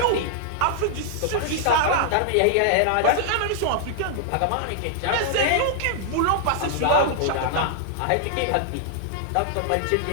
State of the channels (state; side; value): different; both; correlation -0.01